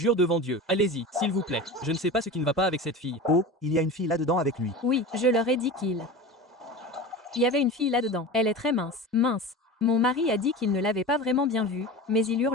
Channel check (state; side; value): normal; both; correlation 0.31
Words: devant Dieu. Allez-y, s'il vous plaît. Je ne sais pas ce qui ne va pas avec cette fille. Oh, il y a une fille là-dedans avec lui. Oui, je leur ai dit qu'il y avait une fille là-dedans. Elle est très mince. Mince. Mon mari a dit qu'il ne l'avait pas vraiment bien vue, mais il